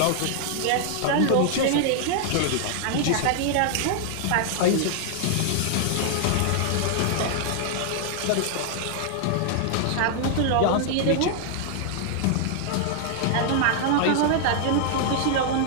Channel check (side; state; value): both; different; correlation 0.00